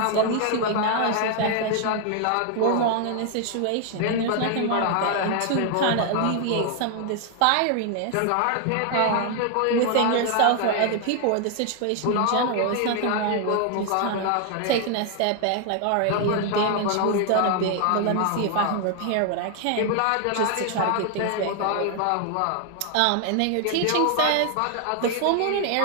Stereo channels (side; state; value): both; different; correlation 0.00